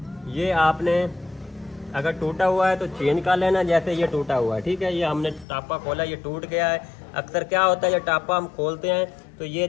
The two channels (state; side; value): drops out; right; at 5.5 s